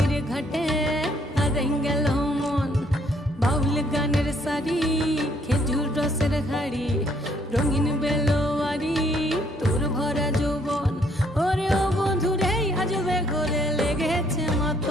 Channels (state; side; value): normal; both; correlation 0.67